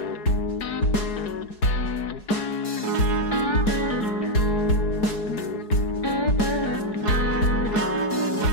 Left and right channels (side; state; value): right; late; 4.7 ms